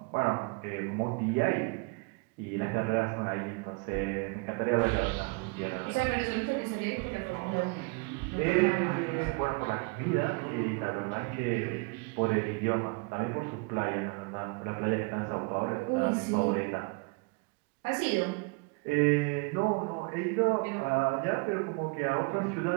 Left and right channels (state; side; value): quieter; left; 30.2 dB